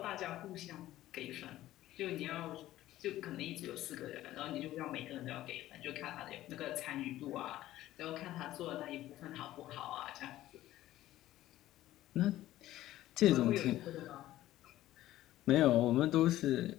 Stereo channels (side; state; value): right; quieter; 14.7 dB